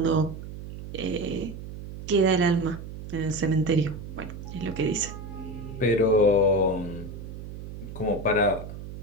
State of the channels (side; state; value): right; noise; hum, 11 dB below the sound